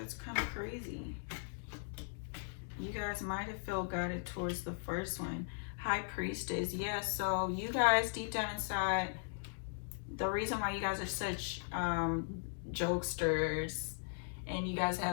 kind of crazy. You guys might have felt guided towards the first one. High Priestess. Yeah, so you guys deep down inside, the reason why you guys are such jokesters and you guys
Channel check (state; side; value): silent; right; digital silence